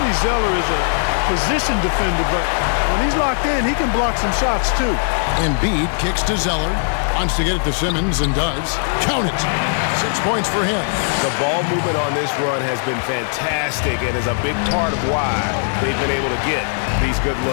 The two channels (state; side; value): silent; right; digital silence